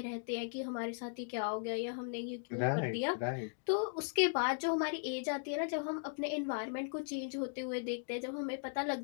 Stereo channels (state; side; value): silent; right; digital silence